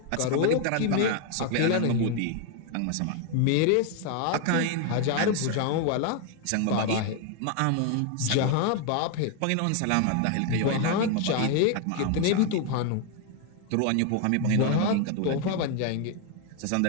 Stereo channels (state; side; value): different; both; correlation 0.01